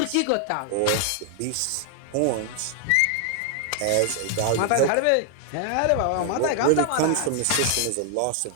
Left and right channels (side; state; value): both; different; correlation 0.00